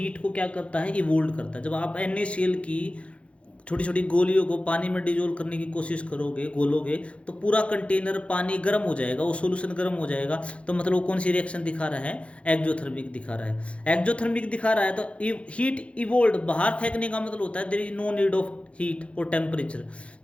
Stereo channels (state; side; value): late; right; 0.061 ms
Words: को क्या करता है इवोल्ड करता है। जब आप NaCl की छोटी छोटी गोलियों को पानी में डिजोल्व करने की कोशिश करोगे, घोलोगे, तो पूरा कंटेनर पानी गर्म हो जाएगा, वो सॉल्यूशन गर्म हो जाएगा। तो मतलब वो कौन सी रिएक्शन दिखा रहा है एक्जोथर्मिक दिखा रहा है। एक्जोथर्मिक दिखा रहा है तो हीट इवोल्ड, बाहर फेंकने का मतलब होता है there is no need of heat और टेम्परेचर।